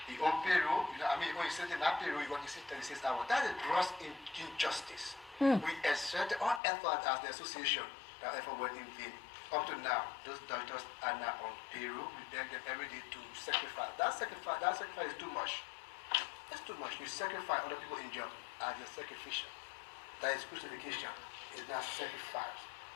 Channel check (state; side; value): drops out; right; at 6.6 s